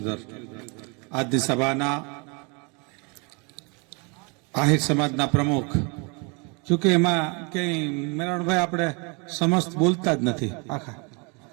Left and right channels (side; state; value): left; quieter; 32.0 dB